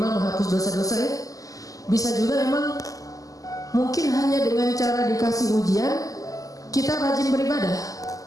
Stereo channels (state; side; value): late; right; 0.17 ms